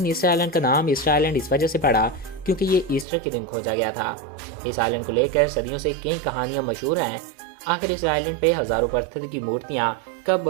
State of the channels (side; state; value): left; drops out; at 3.1 s